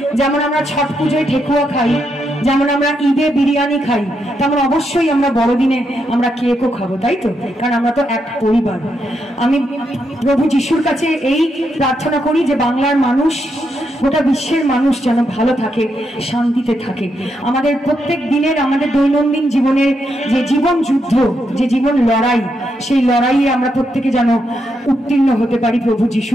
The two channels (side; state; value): both; normal; correlation 0.81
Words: যেমন আমরা ছট পুজোয় ঠেকুয়া খাই, যেমন আমরা ঈদে বিরিয়ানি খাই, তেমন অবশ্যই আমরা বড়দিনে আমরা কেকও খাবো, তাই তো? কারণ আমরা তো এক পরিবার। আমি প্রভু যিশুর কাছে এই প্রার্থনা করি যে বাংলার মানুষ, গোটা বিশ্বের মানুষ যেন ভালো থাকে, শান্তিতে থাকে। আমাদের প্রত্যেক দিনের, আমাদের দৈনন্দিন জীবনের যে জীবন যুদ্ধ, যে জীবন লড়াই, সেই লড়াইয়ে আমরা প্রত্যেকে যেন উত্তীর্ণ হতে পারি। প্রভু যিশু